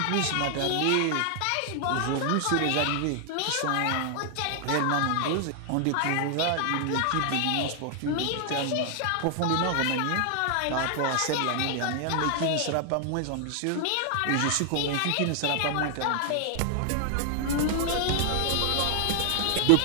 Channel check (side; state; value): both; different; correlation 0.00